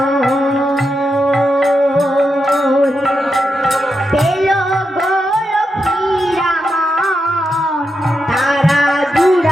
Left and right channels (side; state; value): both; normal; correlation 0.86